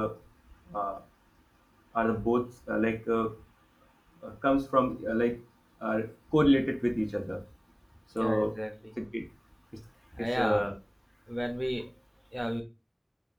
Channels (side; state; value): both; identical; correlation 1.00